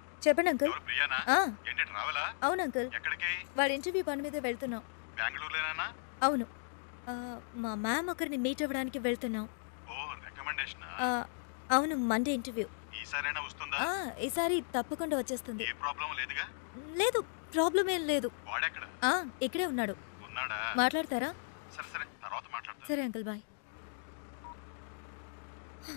చెప్పండి అంకుల్. ప్రియానా? ఏంటి రావాలా? అవును అంకుల్. ఎక్కడికి? వాడి ఇంటర్వ్యూ పని మీద వెళ్తున్నాం. బెంగళూరులోనేనా? అవును. మా మ్యామ్ ఒకరిని మీట్ అవ్వడానికి వెళ్తున్నాం. ఓ రికమెండేషన్. అవును మండే ఇంటర్వ్యూ. ఈసారైనా వస్తుందా? ఈసారి తప్పకుండా వచ్చేస్తుంది. ఏ ప్రాబ్లం లేదుగా? లేదు ప్రాబ్లం ఏం లేదు. వాడెక్కడ? ఇక్కడే ఉన్నాడు. ఉన్నాడా? మాట్లాడతారా? సరే సరే తర్వాత మాట్లాడతా. సరే అంకుల్ బాయ్.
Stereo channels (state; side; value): silent; right; digital silence